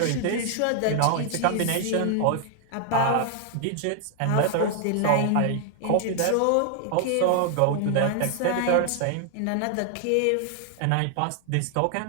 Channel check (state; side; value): different; both; correlation 0.00